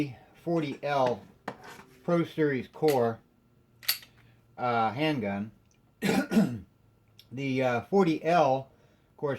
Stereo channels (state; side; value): identical; both; correlation 1.00